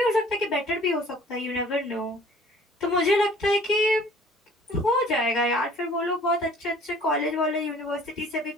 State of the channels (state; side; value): normal; both; correlation 0.52